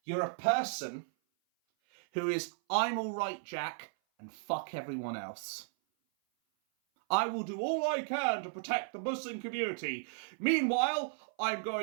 You're a person who is, I'm all right, Jack, and fuck everyone else. I will do all I can to protect the Muslim community. Meanwhile, I'm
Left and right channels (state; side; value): silent; left; 55 dB below the other